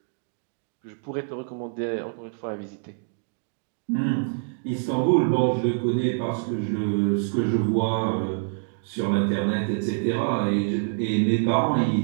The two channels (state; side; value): silent; left; 61 dB below the other